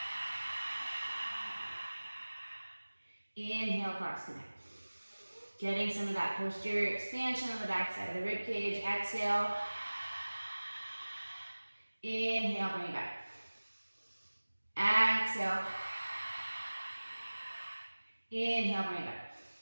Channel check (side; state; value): both; inverted; correlation -1.00